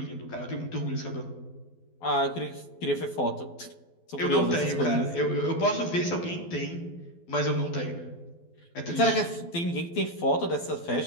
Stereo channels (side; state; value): right; late; 12 ms